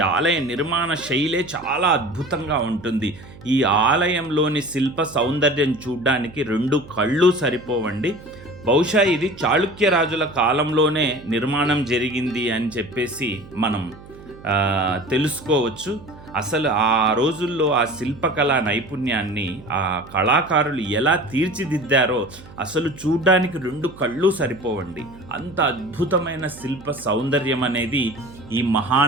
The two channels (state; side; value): noise; right; hum, 19 dB below the sound